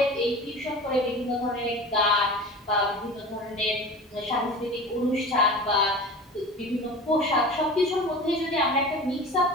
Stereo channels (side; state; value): both; normal; correlation 0.34